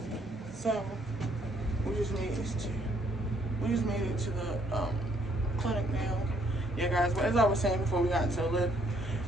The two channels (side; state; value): both; normal; correlation 0.67